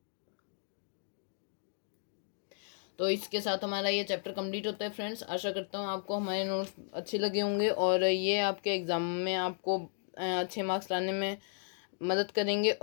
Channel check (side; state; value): right; silent; digital silence